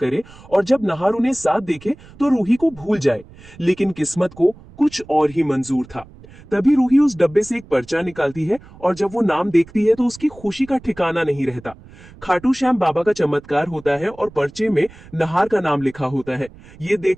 और जब नहार उन्हें साथ देखे तो रूही को भूल जाए। लेकिन किस्मत को कुछ और ही मंजूर था। तभी रूही उस डब्बे से एक पर्चा निकालती है और जब वो नाम देखती है तो उसकी खुशी का ठिकाना नहीं रहता। खाटू श्याम बाबा का चमत्कार होता है और पर्चे में नहार का नाम लिखा होता है। ये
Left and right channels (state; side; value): noise; right; rumble, 21 dB below the sound